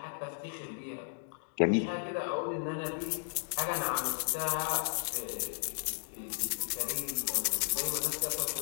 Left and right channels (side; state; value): right; silent; digital silence